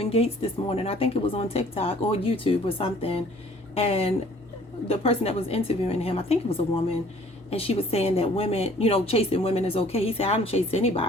Gates this morning. I think it was on TikTok or YouTube or something. And the person that was interviewing him, I think it was a woman, and she was saying that women, chasing women is okay. He said, I don't chase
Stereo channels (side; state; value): both; normal; correlation 0.55